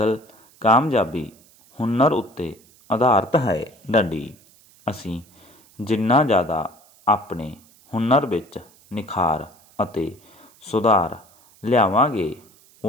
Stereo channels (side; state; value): right; noise; hiss, 28 dB below the sound